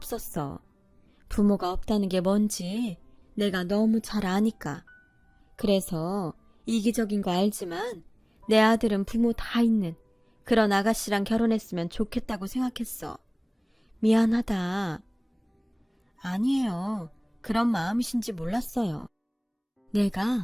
부모가 없다는 게 뭔지 내가 너무 잘 아니까. 그래서 이기적인 거 알지만 내 아들은 부모 다 있는 그런 아가씨랑 결혼했으면 좋겠다고 생각했어. 미안하다. 아니에요. 그런 마음이신지 몰랐어요.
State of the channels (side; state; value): both; identical; correlation 1.00